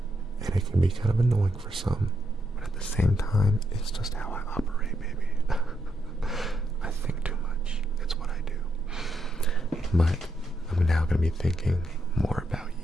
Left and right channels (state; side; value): normal; both; correlation 0.80